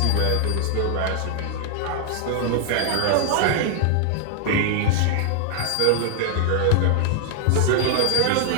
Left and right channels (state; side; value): different; both; correlation 0.00